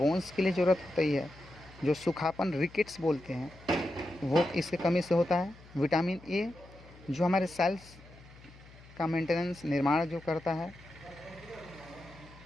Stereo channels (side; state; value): left; noise; hum, 21 dB below the sound